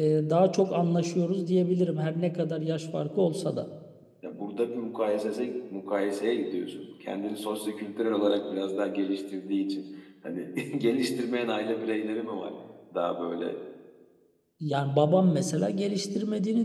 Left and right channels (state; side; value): identical; both; correlation 1.00